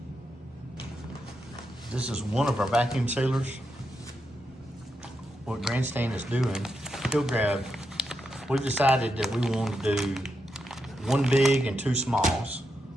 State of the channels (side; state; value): both; normal; correlation 0.85